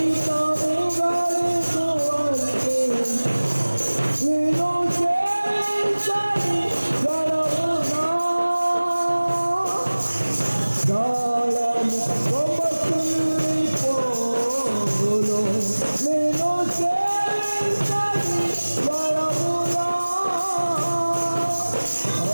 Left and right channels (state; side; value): inverted; both; correlation -1.00